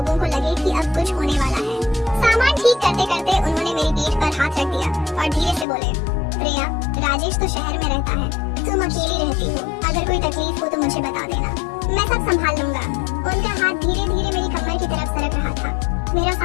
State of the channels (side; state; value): right; drops out; at 5.7 s